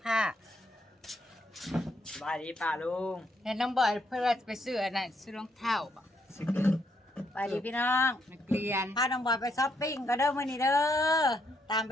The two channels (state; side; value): normal; both; correlation 0.75